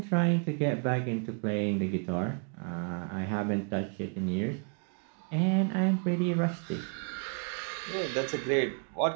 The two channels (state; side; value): quieter; left; 38.9 dB